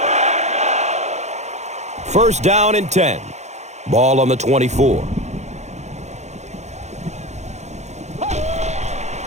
First down and 10. Ball on the 24.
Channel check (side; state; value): left; late; 0.33 ms